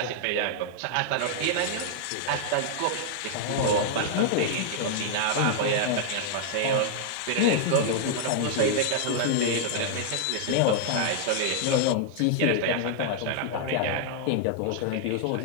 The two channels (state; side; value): different; both; correlation -0.01